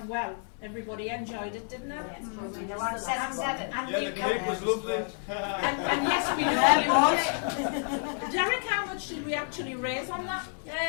well. Everybody enjoyed it, didn't it? Yeah, And Yeah, the cake was lovely. and yes, we know. Derek, how much did we actually raise on that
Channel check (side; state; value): right; silent; 56 dB below the other